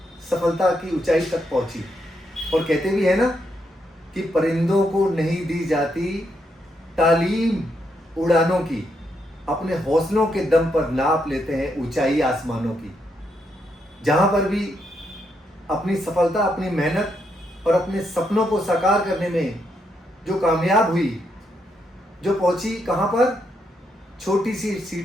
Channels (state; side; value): normal; both; correlation 0.79